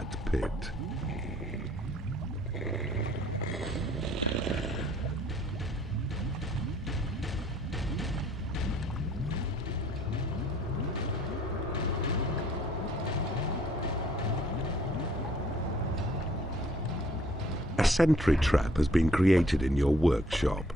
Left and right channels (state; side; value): normal; both; correlation 0.60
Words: pit. A sentry trap has been created in your workshop.